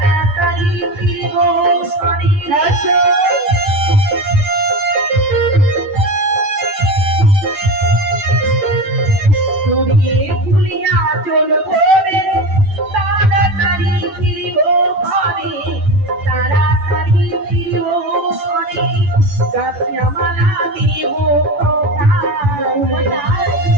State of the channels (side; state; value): left; late; 10 ms